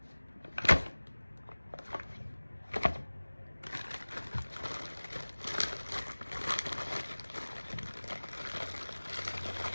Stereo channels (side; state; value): both; inverted; correlation -1.00